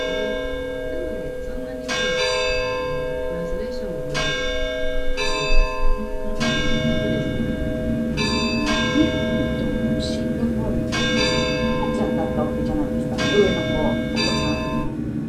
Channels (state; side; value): identical; both; correlation 1.00